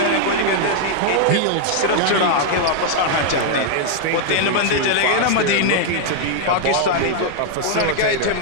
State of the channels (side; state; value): both; different; correlation 0.00